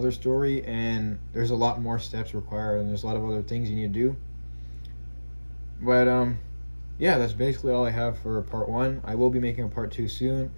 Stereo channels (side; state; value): both; inverted; correlation -1.00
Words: story, and there's a lot more steps required, and there's a lot of other things you need to do. But yeah, that's basically all I have for part 1. I will be making a part 2 soon.